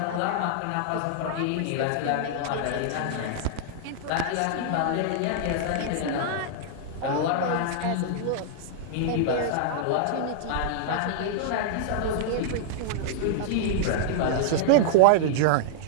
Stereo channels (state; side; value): different; both; correlation -0.01